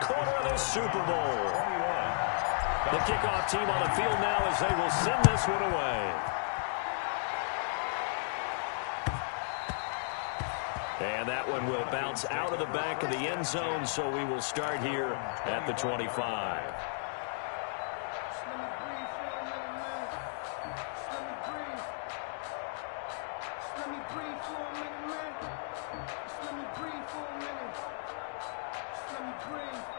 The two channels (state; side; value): silent; right; digital silence